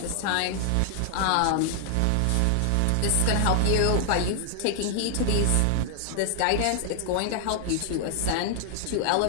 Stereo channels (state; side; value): different; both; correlation 0.00